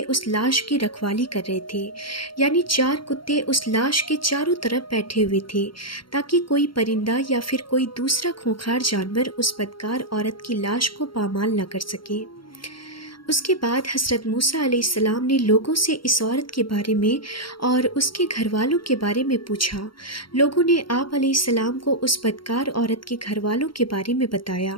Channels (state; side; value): late; right; 0.73 ms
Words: उस लाश की रखवाली कर रहे थे, यानी 4 कुत्ते उस लाश के चारों तरफ बैठे हुए थे ताकि कोई परिंदा या फिर कोई दूसरा खूंखार जानवर उस बदकार औरत की लाश को पामाल न कर सके। उसके बाद हज़रत मूसा अलैहिस्सलाम ने लोगों से इस औरत के बारे में और उसके घर वालों के बारे में पूछा। लोगों ने आप अलैहिस्सलाम को उस बदकार औरत के घर वालों के बारे में